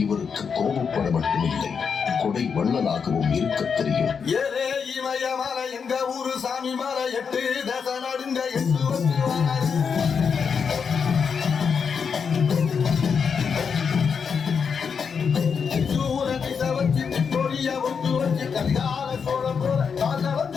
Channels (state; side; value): quieter; right; 6.2 dB